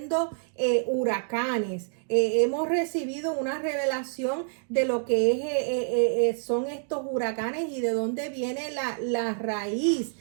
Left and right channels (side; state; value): left; silent; digital silence